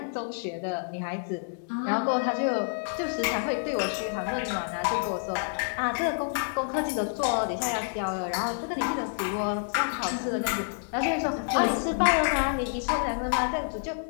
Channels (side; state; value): right; silent; digital silence